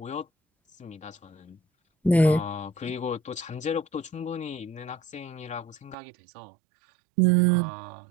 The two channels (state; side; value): drops out; left; at 6.0 s